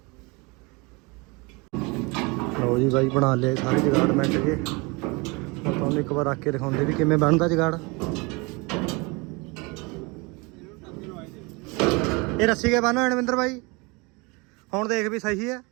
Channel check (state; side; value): quieter; left; 27.4 dB